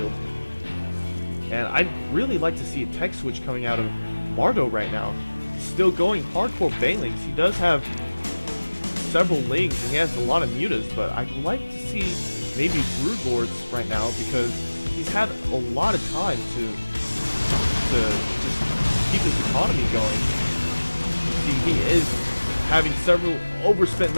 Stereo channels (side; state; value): both; inverted; correlation -1.00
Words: And I'd really like to see a tech switch coming out of Mardow right now. Still going hardcore banelings. He does have several lings and he has a lot of mutas, but I'd like to see maybe Broodlords right now because he's had a lot of time to just keep his economy going. See, he is having several overspent